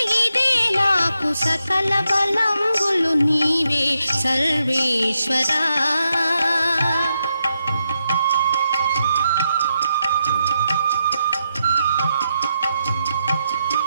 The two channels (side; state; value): both; inverted; correlation -0.84